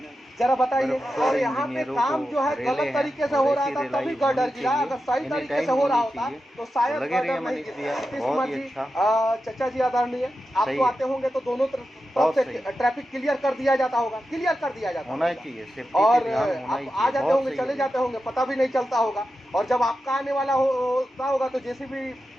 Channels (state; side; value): normal; both; correlation 0.90